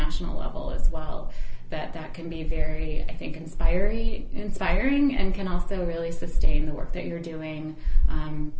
level as well. That can be very, I think, inspiring and can also really sustain the work that you're doing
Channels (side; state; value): both; identical; correlation 1.00